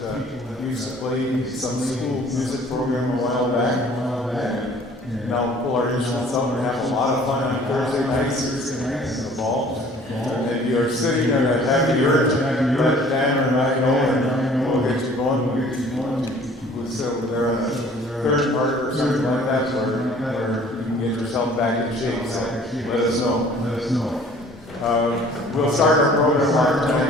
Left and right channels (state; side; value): normal; both; correlation 0.52